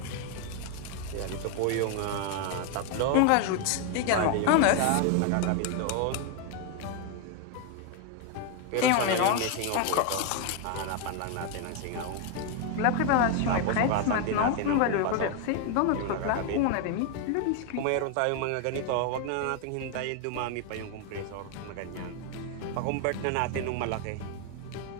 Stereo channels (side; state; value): both; different; correlation 0.01